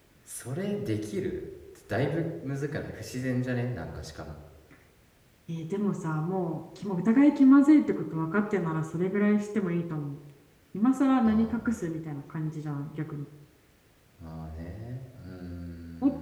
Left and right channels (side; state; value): both; identical; correlation 1.00